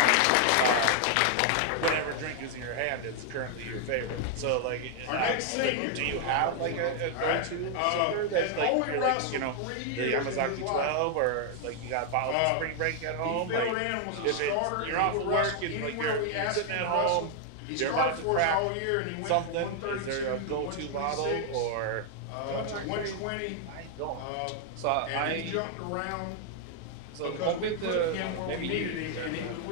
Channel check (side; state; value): both; different; correlation 0.00